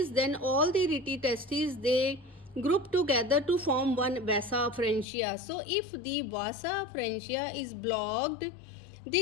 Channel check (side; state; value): right; drops out; at 5.1 s